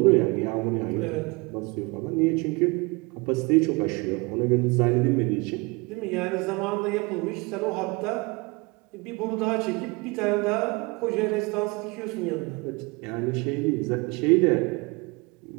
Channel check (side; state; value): left; quieter; 26.9 dB